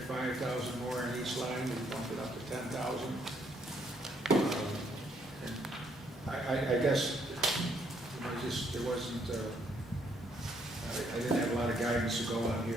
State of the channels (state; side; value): normal; both; correlation 0.70